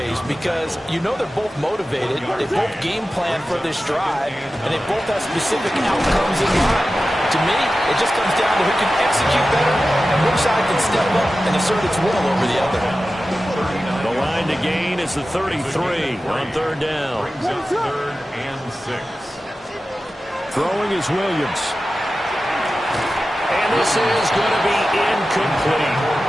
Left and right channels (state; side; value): normal; both; correlation 0.94